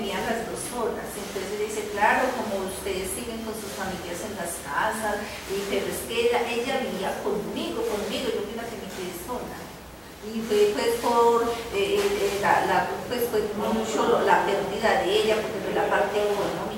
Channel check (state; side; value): identical; both; correlation 1.00